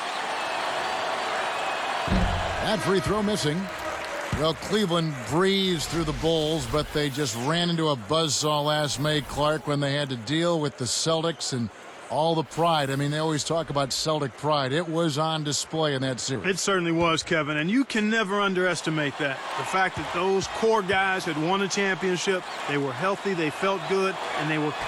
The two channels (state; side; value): identical; both; correlation 1.00